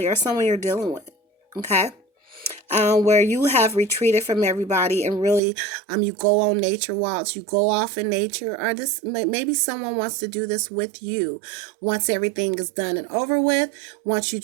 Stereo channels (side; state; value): left; drops out; at 5.4 s